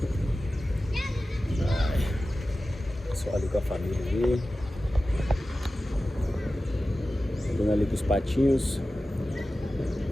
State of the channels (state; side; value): normal; both; correlation 0.95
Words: Só ali com a família ali. Andando ali com os patinhos.